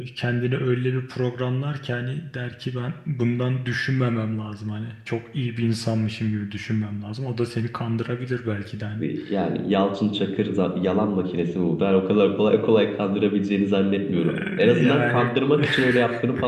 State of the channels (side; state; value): both; identical; correlation 1.00